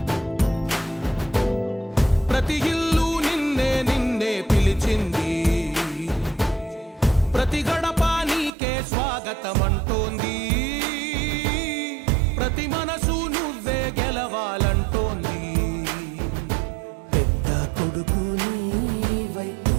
ప్రతి ఇల్లు నిన్నే నిన్నే పిలిచింది, ప్రతి గడప నీకే స్వాగతమంటోంది, ప్రతి మనసు నువ్వే గెలవాలంటోంది. పెద్ద కొడుకు నీవై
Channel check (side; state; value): left; drops out; at 8.5 s